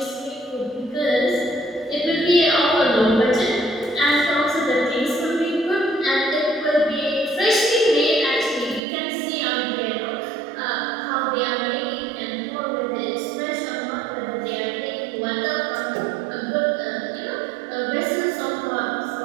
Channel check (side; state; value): left; drops out; at 8.8 s